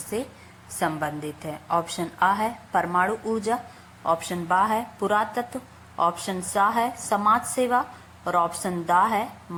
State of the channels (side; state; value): both; identical; correlation 1.00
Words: संबंधित है? ऑप्शन आ है परमाणु ऊर्जा, ऑप्शन बा है पुरातत्व, ऑप्शन सा है समाज सेवा और ऑप्शन दा है